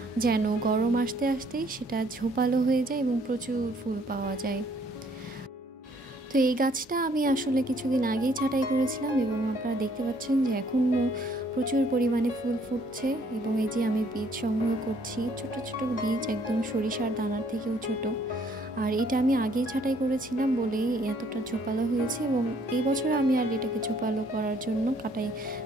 যেন গরম আসতে আসতেই সেটা ঝোপালো হয়ে যায় এবং প্রচুর ফুল পাওয়া যায়। তো এই গাছটা আমি আসলে কিছুদিন আগেই ছাঁটাই করেছিলাম এবং আপনারা দেখতে পাচ্ছেন যে এখনও প্রচুর পরিমাণে ফুল ফুটছে। এবং এই যে আমি বীজ সংগ্রহ করছি, ছোট ছোট বীজ, একদম সরিষার দানার থেকেও ছোট। আর এটা আমি আগেই ছাঁটাই করেছিলাম বলেই এতটা ঝোপালো হয়েছে। এবং এই বছর আমি আর এটাকে ঝোপালো করার জন্য কাটাই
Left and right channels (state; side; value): normal; both; correlation 0.64